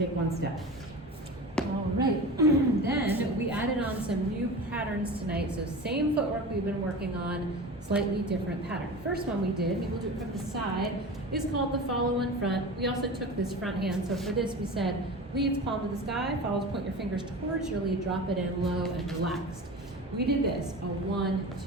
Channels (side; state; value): both; normal; correlation 0.32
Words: 1 step. All right, then we added on some new patterns tonight. So same footwork we've been working on, slightly different pattern. First one we did, maybe we'll do it from the side, is called the follow in front. We also took this front hand. So for this we said, leads palm to the sky, follows, point your fingers towards your lead, drop it in low and relaxed. We did this, a 1,